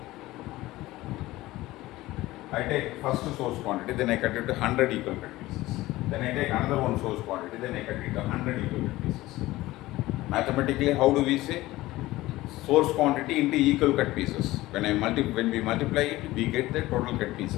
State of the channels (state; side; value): quieter; right; 17.8 dB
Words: I take first source quantity, then I cut it to 100 equal cut pieces. Then I take another one source quantity, then I cut it to 100 equal cut pieces. Mathematically, how do we say? Source quantity into equal cut pieces. When we multiply it, we get the total cut